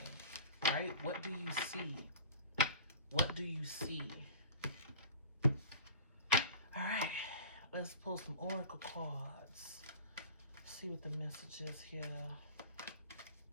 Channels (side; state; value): both; inverted; correlation -0.39